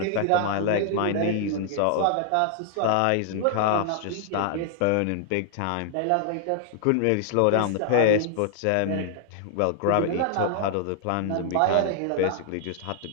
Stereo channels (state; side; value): different; both; correlation 0.00